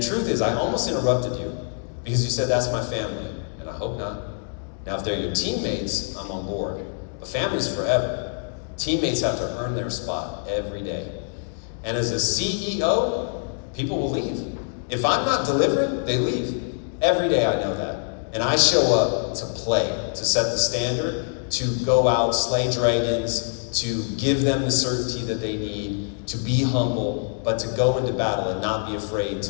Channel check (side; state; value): right; silent; 61 dB below the other